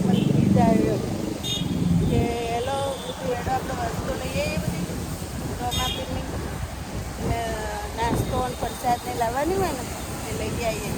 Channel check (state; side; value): identical; both; correlation 1.00